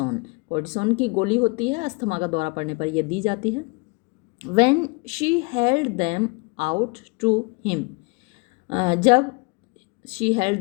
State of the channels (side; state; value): right; quieter; 29.5 dB